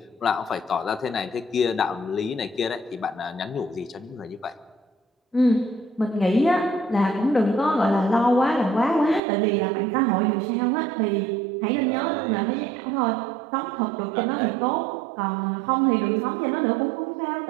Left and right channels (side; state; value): left; drops out; at 9.2 s